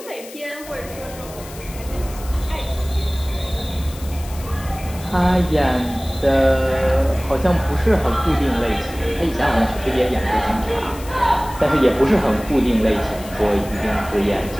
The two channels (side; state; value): left; noise; hiss, 17 dB below the sound